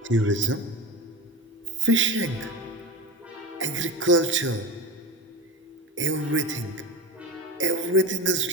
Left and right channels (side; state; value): both; normal; correlation 0.26